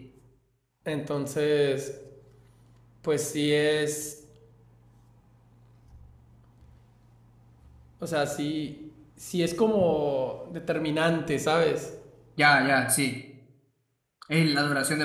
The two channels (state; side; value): identical; both; correlation 1.00